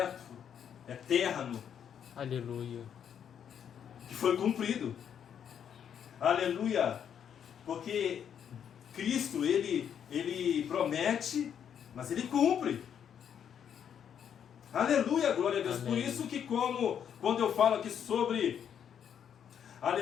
eterno. Aleluia. Que foi cumprido. Aleluia. Porque Cristo, ele promete, mas Ele cumpre. Aleluia, glória a Deus. Amém. Por isso que quando eu falo aqui sobre,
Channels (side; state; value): right; quieter; 8.5 dB